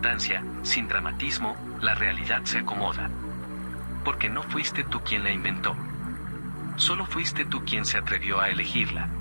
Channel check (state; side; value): inverted; both; correlation -1.00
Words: sin dramatismo, la realidad se acomoda. Porque no fuiste tú quien la inventó. Solo fuiste tú quien se atrevió a elegirla.